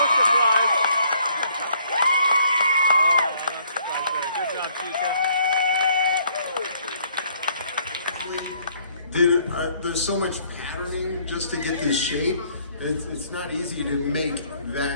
surprise. Good job, Chica. There's so much patterning just to get this shape. It's not easy to make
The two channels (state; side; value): inverted; both; correlation -0.64